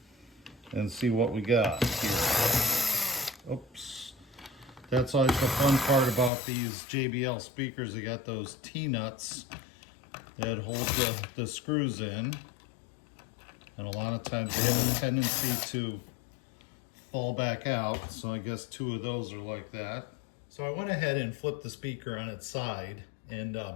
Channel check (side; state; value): right; drops out; at 6.3 s